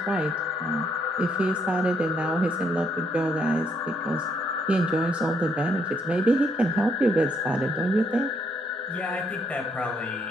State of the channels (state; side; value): normal; both; correlation 0.73